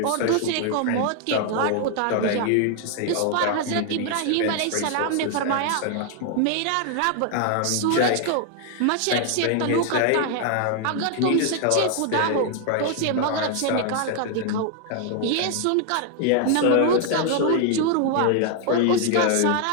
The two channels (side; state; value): both; different; correlation 0.00